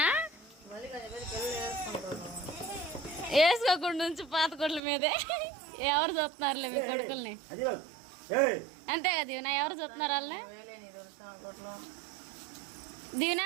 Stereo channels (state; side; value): drops out; left; at 4.8 s